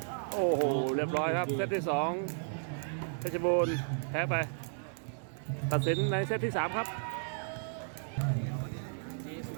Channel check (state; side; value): silent; left; digital silence